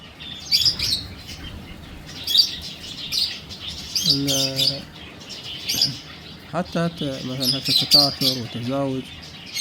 حتى مثلا التكاثر والتزاوج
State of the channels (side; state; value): both; identical; correlation 1.00